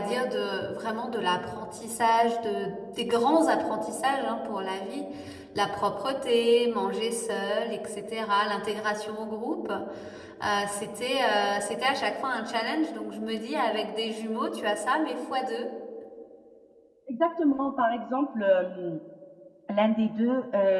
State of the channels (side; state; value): both; identical; correlation 1.00